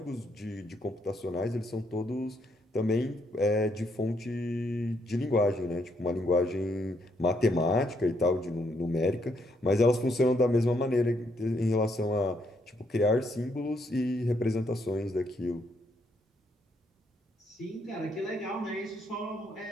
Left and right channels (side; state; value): both; normal; correlation 0.74